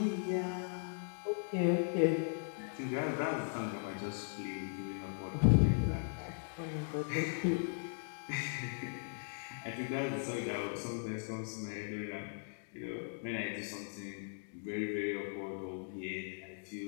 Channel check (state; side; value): silent; right; digital silence